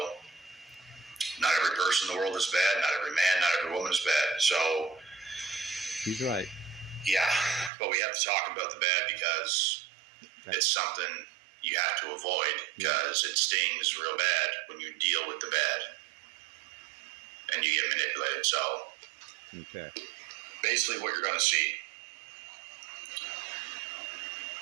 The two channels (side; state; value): left; drops out; at 7.7 s